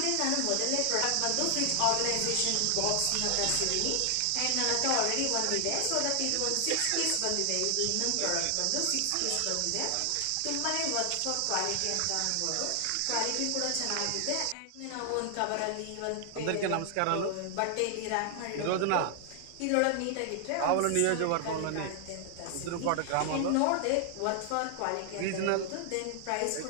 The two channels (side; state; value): both; different; correlation 0.00